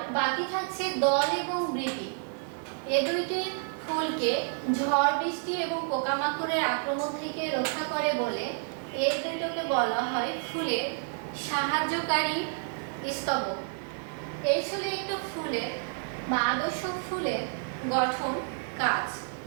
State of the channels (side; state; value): left; silent; 58 dB below the other